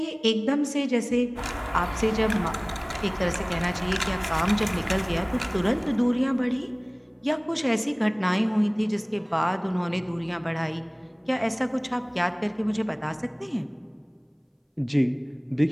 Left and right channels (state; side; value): identical; both; correlation 1.00